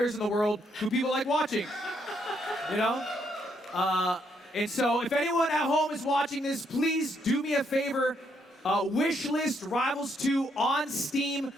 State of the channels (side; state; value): both; normal; correlation 0.74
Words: in the world who people like watching. You know? And so if anyone at home is watching this, please do me a favor. Wish list Rivals 2 on Steam